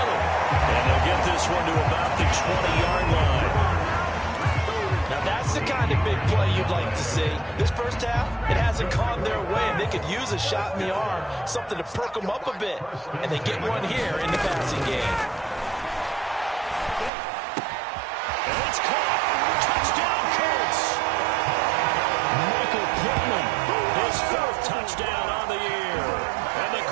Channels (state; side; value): drops out; left; at 17.1 s